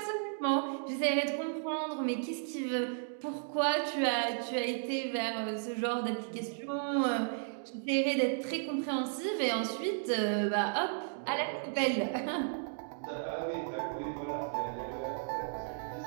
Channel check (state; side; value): silent; left; digital silence